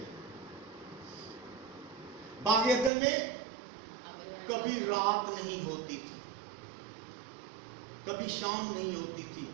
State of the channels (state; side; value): drops out; left; at 2.9 s